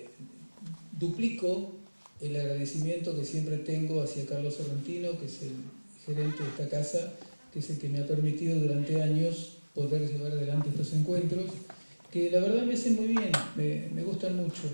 duplico el agradecimiento que siempre tengo hacia Carlos Sorrentino, que es el gerente de esta casa, que es el que me ha permitido durante años poder llevar adelante estos encuentros, que la verdad me hacen muy bien, me gustan mucho.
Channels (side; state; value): both; inverted; correlation -1.00